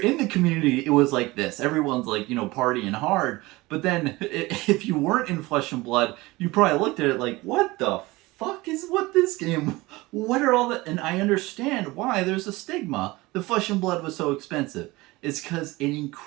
the community, it was like this. Everyone's like, you know, partying hard. But then if you weren't in Flesh and Blood, you probably looked at it like, what the fuck is what this game? What are all the? And I understand why there's a stigma. The Flesh and Blood was so expensive. It's because it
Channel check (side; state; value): left; quieter; 21.1 dB